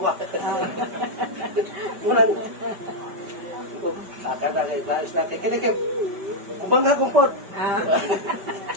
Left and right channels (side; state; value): left; late; 5.1 ms